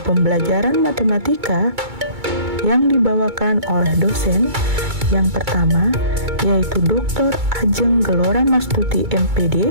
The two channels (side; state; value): left; late; 2.2 ms